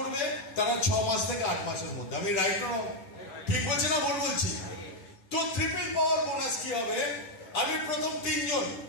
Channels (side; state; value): right; late; 10 ms